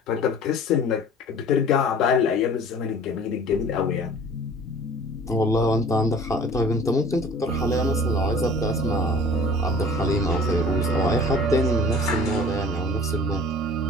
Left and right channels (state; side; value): normal; both; correlation 0.46